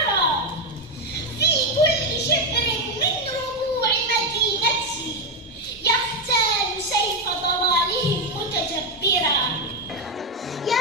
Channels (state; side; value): normal; both; correlation 0.07